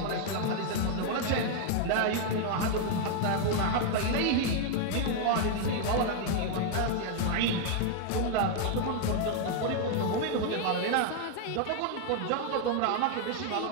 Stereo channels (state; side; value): different; both; correlation 0.00